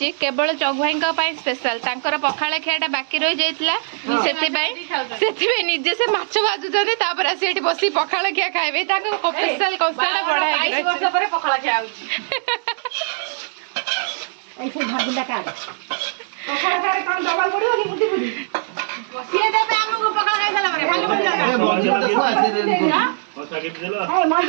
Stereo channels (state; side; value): silent; left; digital silence